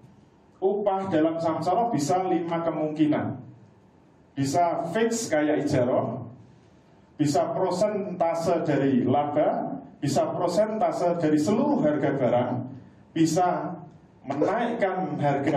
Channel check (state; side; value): identical; both; correlation 1.00